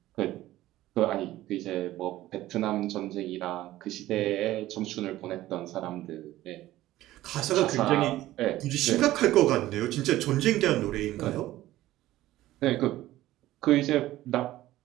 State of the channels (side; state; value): left; quieter; 15.4 dB